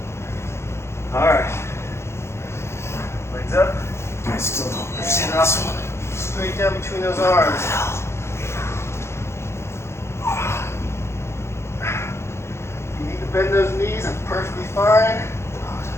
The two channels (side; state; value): right; late; 0.13 ms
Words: All right. Legs up. I still don't understand this one. Straight down between those arms. If you need to bend those knees, that's perfectly fine.